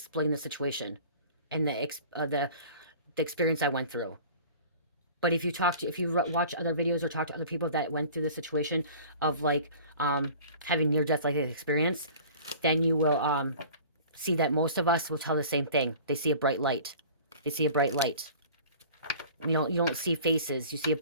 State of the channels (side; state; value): both; inverted; correlation -0.44